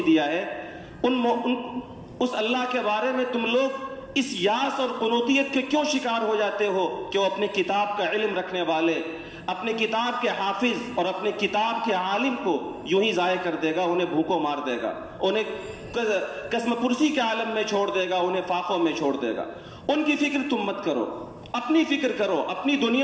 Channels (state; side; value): identical; both; correlation 1.00